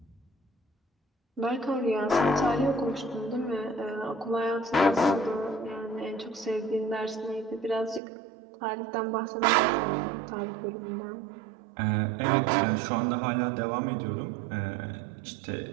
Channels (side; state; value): left; drops out; at 8.0 s